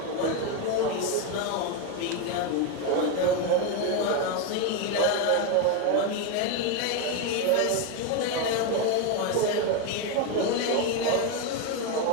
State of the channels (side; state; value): both; different; correlation 0.03